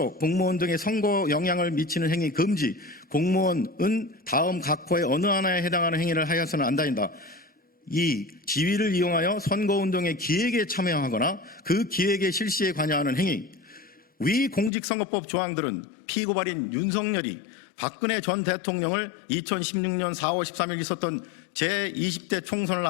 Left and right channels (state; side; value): drops out; right; at 14.7 s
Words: 공무원 등의 선거 영향을 미치는 행위 금지. 공무원은 다음 각호의 어느 하나에 해당하는 행위를 하여서는 안 다닌다. 2. 지위를 이용하여 선거운동의 기획에 참여하거나 그 기획의 실시에 관여하는 행위. 위 공직선거법 조항들은 피고발인 윤석열이 박근혜 전 대통령을 2016년 4월 13일 있었던 제20대 총선을